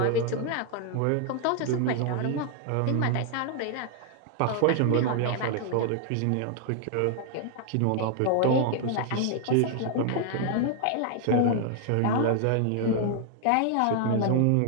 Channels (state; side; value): different; both; correlation 0.00